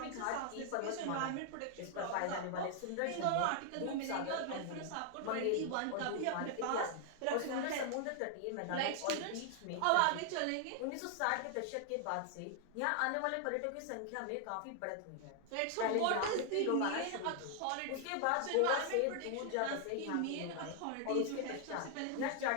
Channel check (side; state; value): both; different; correlation 0.00